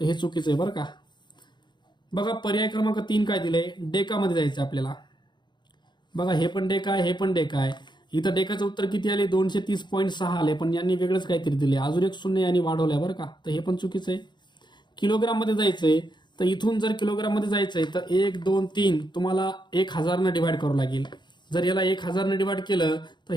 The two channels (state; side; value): late; right; 0.22 ms